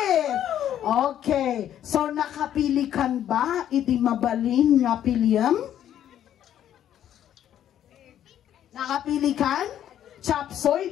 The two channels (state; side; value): quieter; right; 10.8 dB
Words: Okay. So, nakapili kan ba iti mabalin nga piliam? Nakapili kan? Chapsoy,